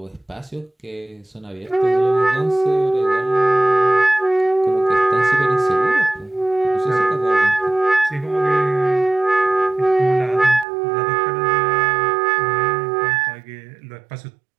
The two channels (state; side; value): drops out; left; at 10.7 s